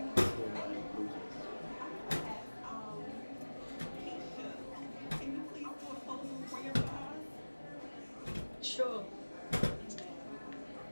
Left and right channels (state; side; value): inverted; both; correlation -1.00